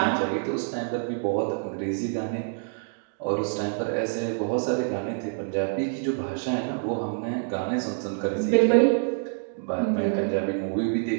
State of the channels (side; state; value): left; silent; digital silence